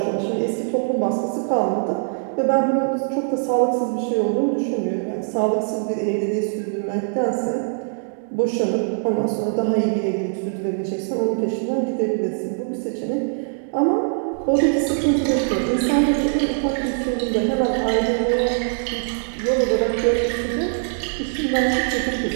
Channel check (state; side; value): silent; left; digital silence